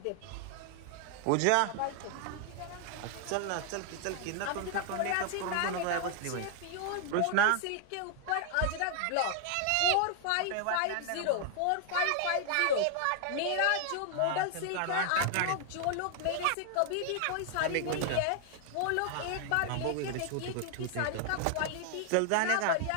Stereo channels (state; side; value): different; both; correlation 0.00